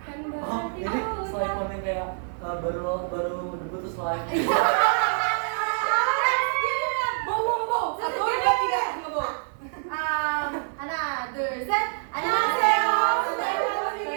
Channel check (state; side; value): silent; left; 57 dB below the other